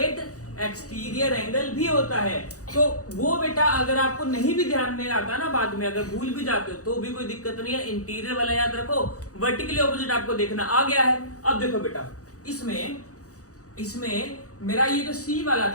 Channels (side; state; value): right; late; 0.66 ms